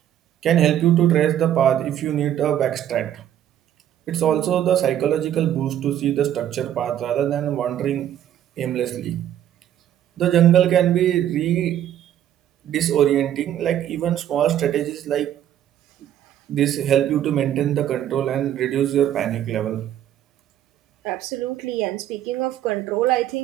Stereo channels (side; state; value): left; quieter; 11.0 dB